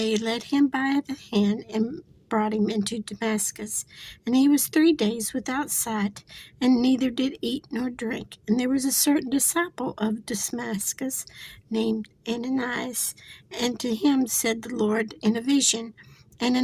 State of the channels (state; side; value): identical; both; correlation 1.00